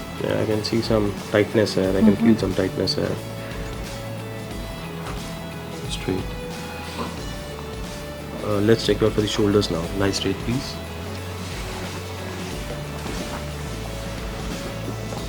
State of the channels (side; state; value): both; identical; correlation 1.00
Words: Yeah, I can see some tightness here. I can feel some tightness here. Straight. Let's check out for the shoulders now. Lie straight, please.